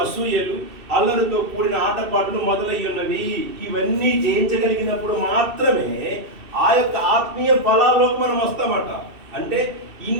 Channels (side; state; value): left; late; 2.7 ms